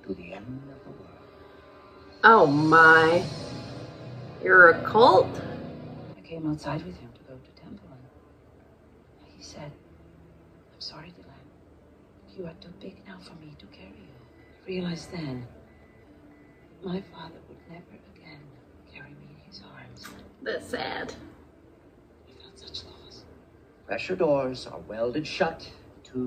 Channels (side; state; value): both; identical; correlation 1.00